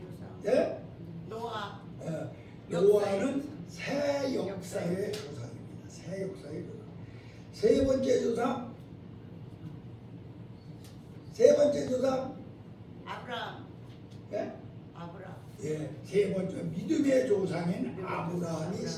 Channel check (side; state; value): both; identical; correlation 1.00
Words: 조상. 예? 노아. 노아는 새 역사의 조상입니다. 새 역사의 조상. 세 번째 조상 아브라함. 예? 아브라함. 예, 세 번째 믿음의 조상인 아브라함이